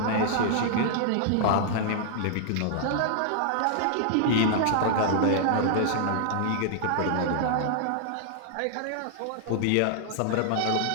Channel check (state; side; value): different; both; correlation -0.01